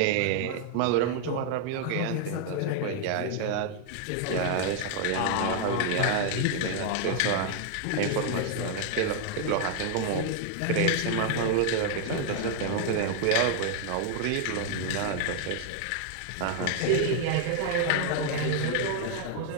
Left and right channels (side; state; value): both; different; correlation 0.00